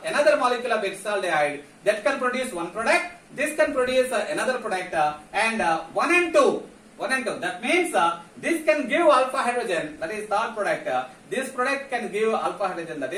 molecule of acetaldehyde, that can produce one product. This can produce another product, and 1 and 2. That means this can give alpha hydrogen, that is third product. This product can give alpha hydrogen, that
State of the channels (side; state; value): both; identical; correlation 1.00